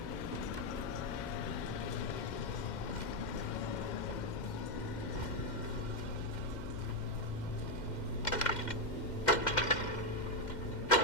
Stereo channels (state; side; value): late; right; 2.1 ms